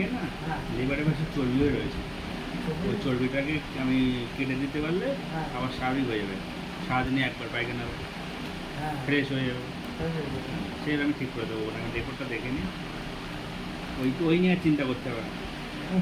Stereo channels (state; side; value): identical; both; correlation 1.00